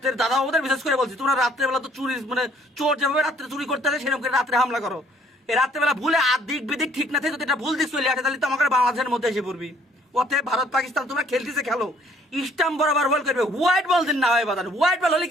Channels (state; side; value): normal; both; correlation 0.61